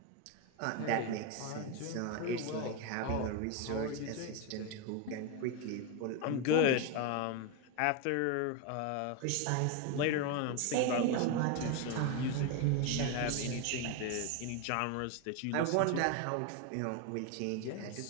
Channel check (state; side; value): different; both; correlation 0.02